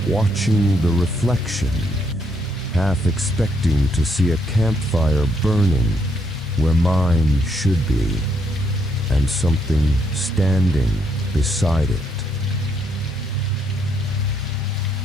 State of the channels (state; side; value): normal; both; correlation 0.74